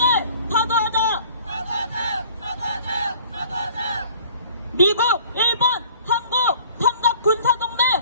타도하자. 사과하자! 사과하자! 사과하자! 미국, 일본, 한국 삼각 군사동맹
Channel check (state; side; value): inverted; both; correlation -0.51